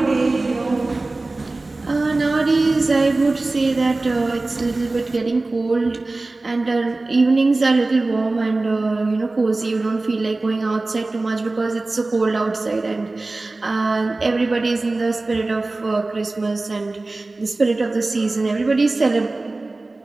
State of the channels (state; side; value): quieter; left; 3.2 dB